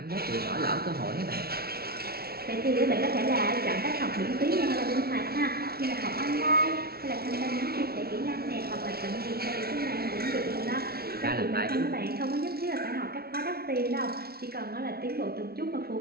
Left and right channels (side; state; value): left; late; 0.45 ms